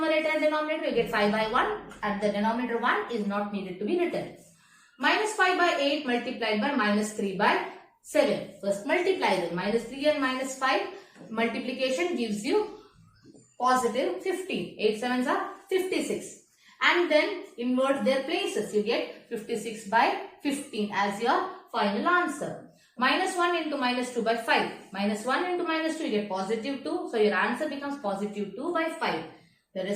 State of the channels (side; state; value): both; identical; correlation 1.00